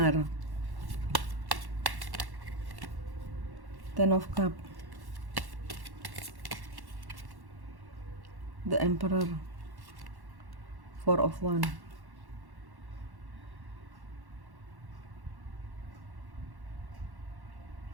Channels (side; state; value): left; late; 1.1 ms